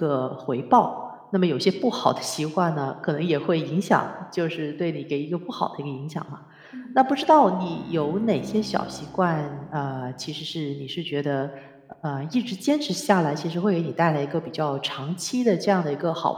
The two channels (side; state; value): both; identical; correlation 1.00